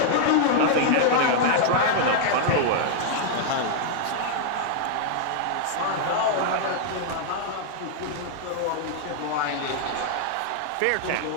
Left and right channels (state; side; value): different; both; correlation -0.01